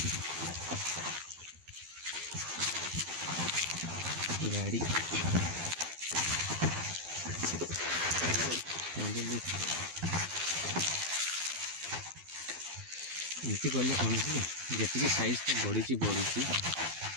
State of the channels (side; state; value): left; late; 12 ms